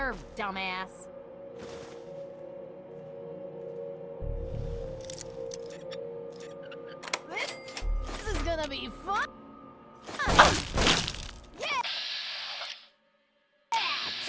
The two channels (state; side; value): identical; both; correlation 1.00